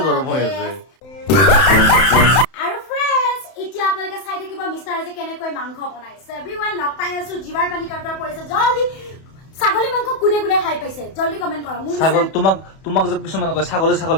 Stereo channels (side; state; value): right; late; 31 ms